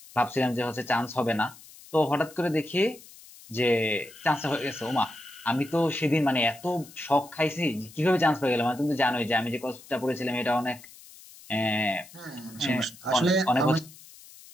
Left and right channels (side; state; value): left; noise; hiss, 21 dB below the sound